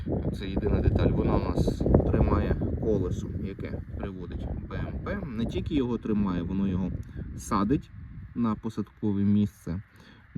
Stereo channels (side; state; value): both; identical; correlation 1.00